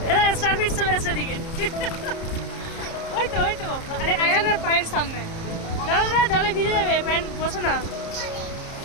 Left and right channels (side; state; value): right; late; 30 ms